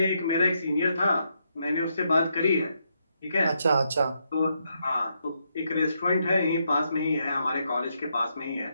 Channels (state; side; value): inverted; both; correlation -0.79